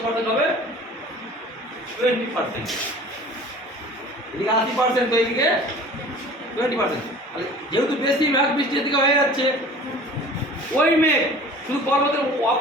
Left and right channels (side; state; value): both; normal; correlation 0.44